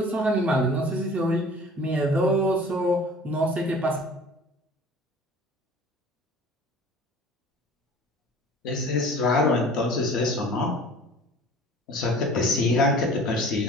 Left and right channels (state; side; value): normal; both; correlation 0.45